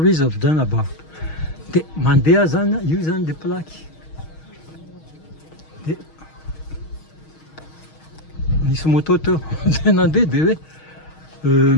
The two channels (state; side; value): late; right; 6.4 ms